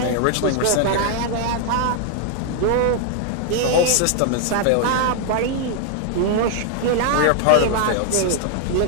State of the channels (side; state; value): both; different; correlation 0.00